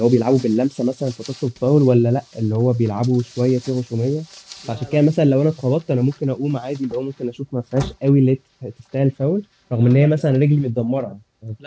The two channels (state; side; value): identical; both; correlation 1.00